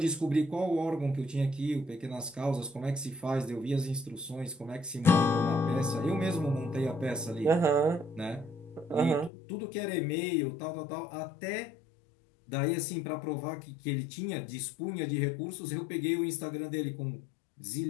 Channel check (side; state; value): right; drops out; at 9.3 s